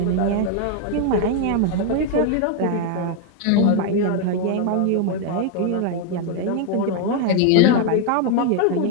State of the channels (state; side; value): different; both; correlation 0.01